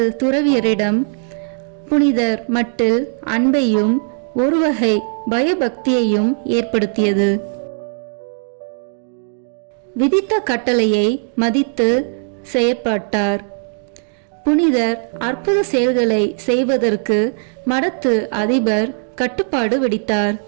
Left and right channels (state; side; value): silent; left; digital silence